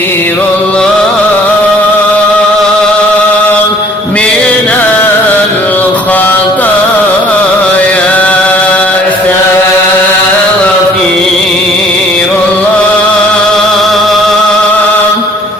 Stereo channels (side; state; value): both; normal; correlation 0.56